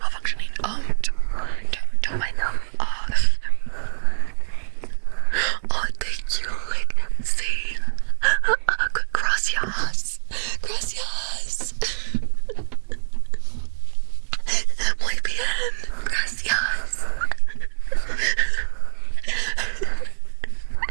Don't mind them. Oh, thank you. Like, see. Gracias. Muy bien. Gracias.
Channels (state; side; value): silent; left; digital silence